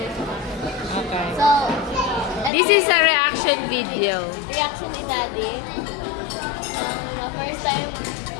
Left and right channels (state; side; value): drops out; right; at 2.5 s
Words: Okay. So, This is a reaction video. reaction ni Daddy.